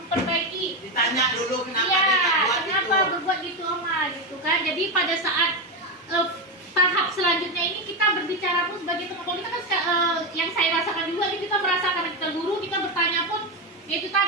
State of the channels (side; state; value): both; normal; correlation 0.11